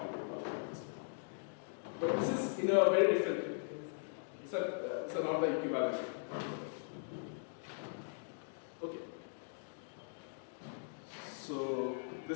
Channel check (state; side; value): silent; right; digital silence